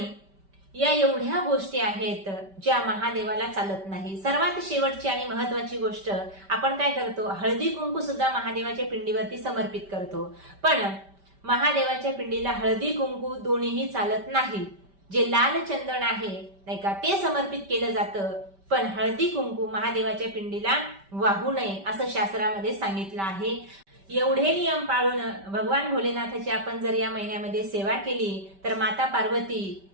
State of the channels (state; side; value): late; left; 5.1 ms